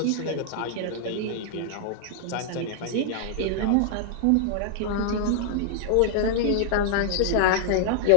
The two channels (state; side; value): different; both; correlation -0.01